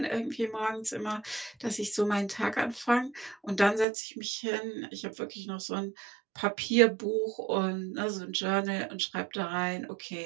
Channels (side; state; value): left; drops out; at 3.9 s